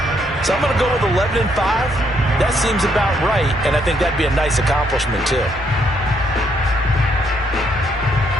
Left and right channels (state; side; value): normal; both; correlation 0.72